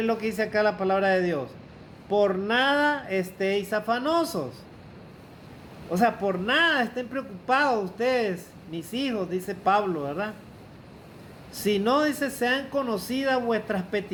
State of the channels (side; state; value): both; identical; correlation 1.00